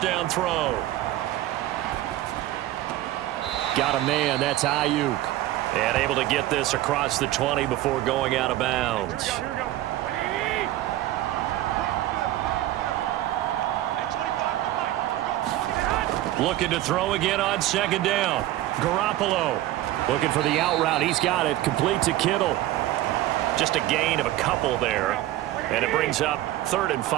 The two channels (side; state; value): left; quieter; 15.0 dB